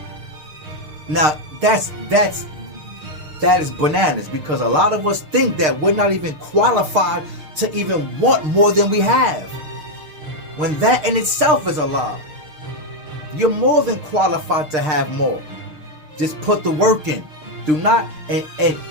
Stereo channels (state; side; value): late; left; 6.6 ms